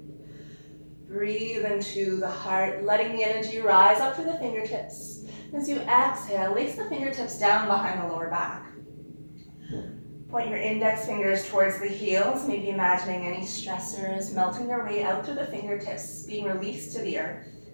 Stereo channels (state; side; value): inverted; both; correlation -1.00